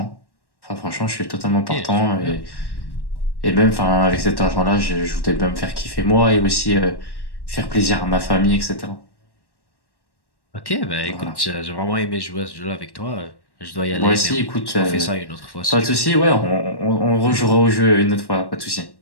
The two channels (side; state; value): right; late; 1.1 ms